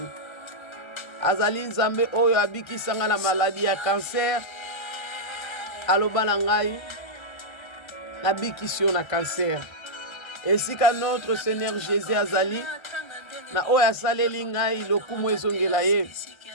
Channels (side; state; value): right; late; 1.3 ms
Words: Azali Nzambe oyo abikisa ngai na maladie ya cancer. Aloba na ngai nabikisi yo na cancer. Esika notre Seigneur Jésus azali na oyo asaleli ngai lokumu ezongela ye